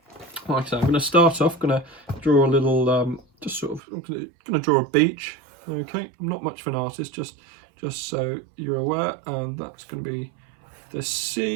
like I say, I'm going to start off, going to draw a little, I'm going to draw a beach. Okay, I'm not much of an artist, just so you're aware, and that's going to be the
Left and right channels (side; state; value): left; drops out; at 3.8 s